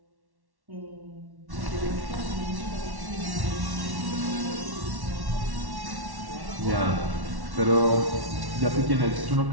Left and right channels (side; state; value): left; late; 1.1 ms